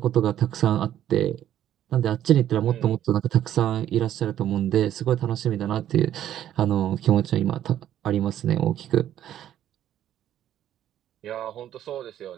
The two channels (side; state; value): left; quieter; 11.4 dB